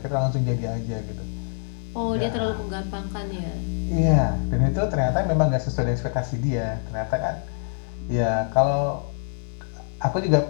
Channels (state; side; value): silent; right; 62 dB below the other